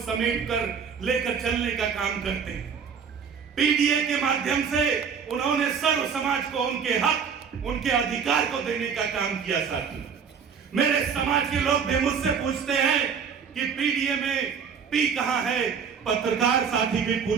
समेट कर लेकर चलने का काम करते हैं। पीडीए के माध्यम से उन्होंने सर्व समाज को उनके हक, उनके अधिकार को देने का काम किया। साथियों, मेरे समाज के लोग भी मुझसे पूछते हैं कि पीडीए में पी कहां है, पत्रकार साथी भी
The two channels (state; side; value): quieter; left; 6.6 dB